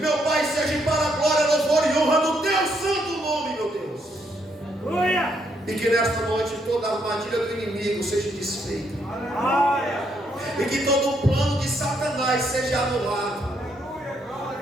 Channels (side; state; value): both; normal; correlation 0.74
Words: Pai, seja para a glória, louvor e honra do Teu santo nome, meu Deus. E que nesta noite toda a armadilha do inimigo seja desfeita, e que todo o plano de Satanás seja anulado